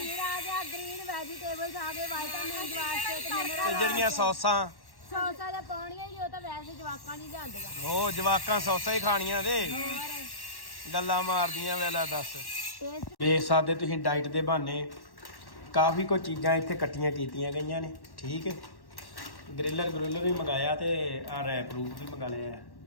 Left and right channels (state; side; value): late; right; 1.1 ms